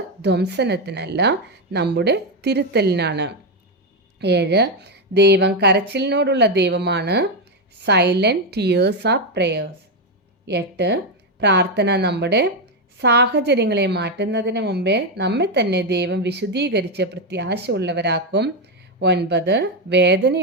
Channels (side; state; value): both; normal; correlation 0.07